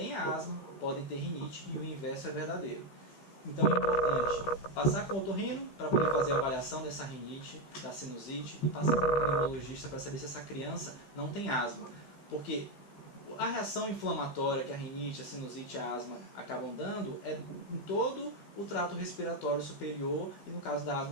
asma podem ter rinite e o inverso é verdadeiro. Então é importante passar com o otorrino para poder fazer a avaliação dessa rinite, da sinusite, e passar com o pneumologista para saber se essa criança não tem asma. Porque a reação inflamatória que a rinite, a sinusite e a asma acabam dando é em todo o trato respiratório superior e, no caso da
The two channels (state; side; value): late; right; 16 ms